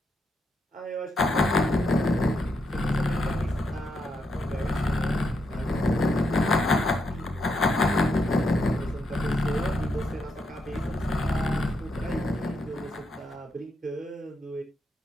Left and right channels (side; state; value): both; normal; correlation 0.80